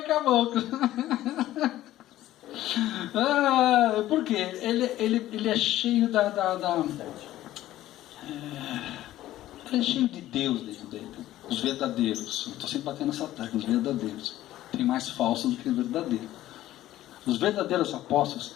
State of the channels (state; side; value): quieter; right; 14.3 dB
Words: com a boca. Por quê? Ele é cheio ele é cheio de Deus dentro dele. Os verdadeiros. Eu estou sempre batendo essa tecla. Os verdadeiros. Tem mais falsos do que verdadeiros. Os verdadeiros apóstolos,